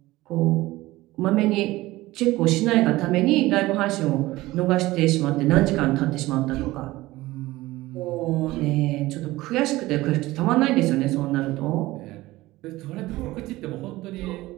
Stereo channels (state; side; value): quieter; left; 18.3 dB